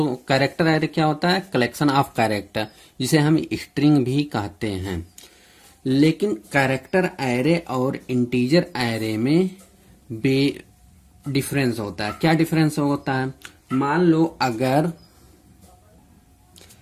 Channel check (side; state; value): both; identical; correlation 1.00